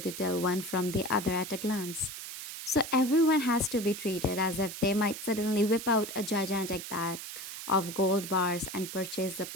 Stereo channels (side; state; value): right; noise; hiss, 9 dB below the sound